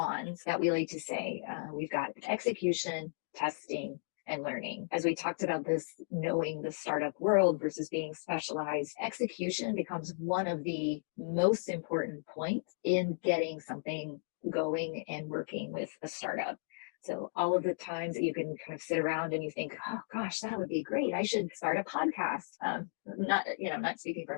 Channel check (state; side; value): silent; right; digital silence